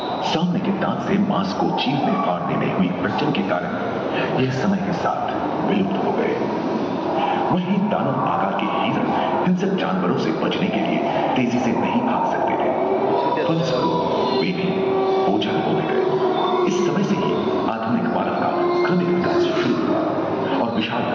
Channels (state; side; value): identical; both; correlation 1.00